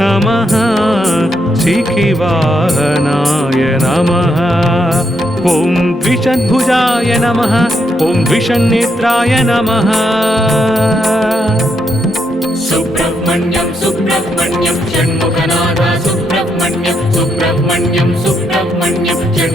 नमः शिखिवाहनाय नमः ॐ द्विषद्भुजाय नमः ॐ द्विषन्नेत्राय नमः सुब्रह्मण्यं सुब्रह्मण्यं षण्मुखनादा सुब्रह्मण्यं सुब्रह्मण्यं सुब्रह्मण्यं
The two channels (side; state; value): both; normal; correlation 0.79